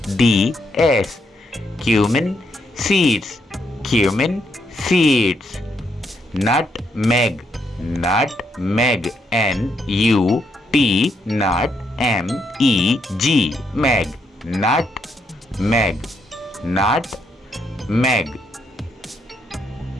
Cumin seeds. Cumin seeds. Nutmeg. Nutmeg. NUT. NUTMEG. Meg. Nutmeg. Nutmeg.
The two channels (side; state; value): both; normal; correlation 0.77